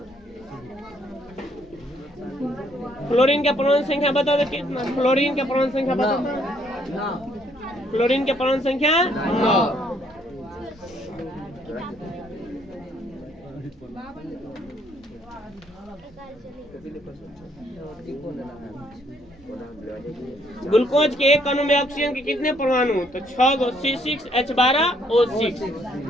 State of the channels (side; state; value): both; normal; correlation 0.68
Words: फ्लोरीन के परमाणु संख्या बता दो कितना? फ्लोरीन के परमाणु संख्या बता दो। फ्लोरीन के परमाणु संख्या 9। ग्लूकोज के एक अणु में ऑक्सीजन के कितने परमाणु? तो 6 गो C6H12O6।